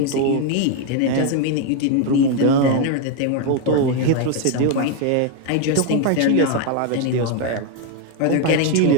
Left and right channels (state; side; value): different; both; correlation 0.01